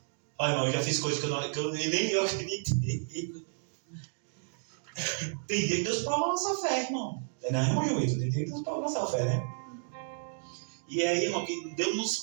Olha, irmão, eu já fiz coisas que nem eu acreditei. Tem dia que Deus prova a nossa fé, irmão. Não, irmão Joito, tem dia que Deus prova a nossa fé, né? E aí, irmão, que Deus nos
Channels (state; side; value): silent; left; digital silence